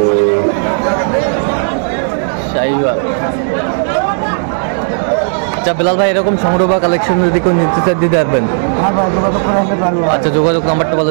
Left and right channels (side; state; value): left; silent; digital silence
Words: শাহিওয়াল। আচ্ছা বিলাল ভাই, এরকম সংগ্রহ বা কালেকশন যদি কেউ নিতে চায় দিতে পারবেন? হ্যাঁ ভাই যোগাযোগ করে আসতে পারবো। আচ্ছা, যোগাযোগ নাম্বারটা